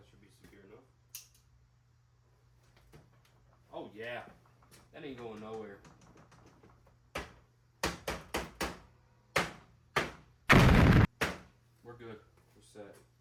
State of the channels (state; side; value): identical; both; correlation 1.00